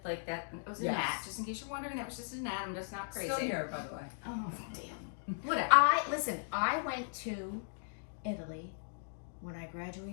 like that, it was a Yes. gnat. Just in case you're wondering, that was just a gnat. I'm just not crazy. Still here, by the way. Oh, damn. Whatever. I went to Italy when I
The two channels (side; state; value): right; silent; digital silence